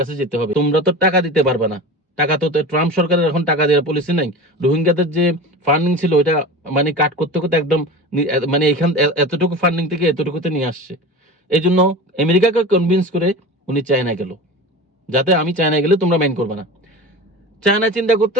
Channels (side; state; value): both; normal; correlation 0.32